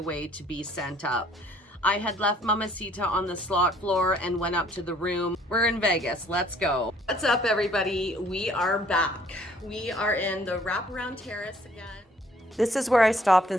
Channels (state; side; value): normal; both; correlation 0.60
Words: to be sent up. I had left Mamacita on the slot floor and went up to the room. We're in Vegas, let's go. What's up, everybody? We are back. We are in the wraparound terrace again. This is where I stopped